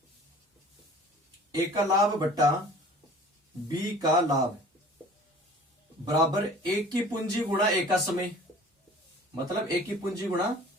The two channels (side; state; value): both; normal; correlation 0.46